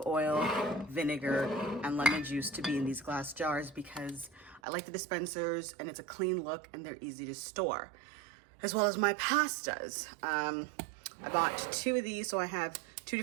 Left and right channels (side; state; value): left; drops out; at 4.6 s